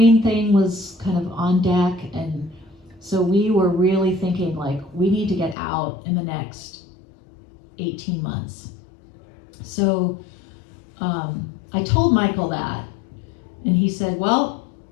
thing was kind of on deck. And so we were really thinking like, we need to get out in the next 18 months. So I told Michael that, and he said, well,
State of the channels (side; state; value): right; drops out; at 5.6 s